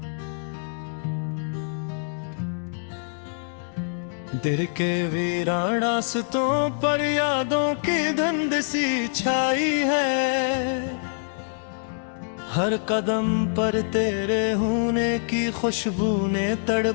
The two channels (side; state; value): right; silent; digital silence